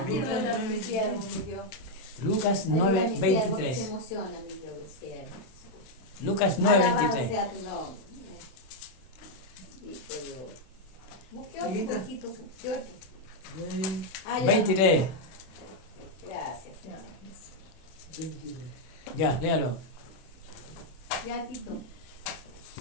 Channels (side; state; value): right; late; 31 ms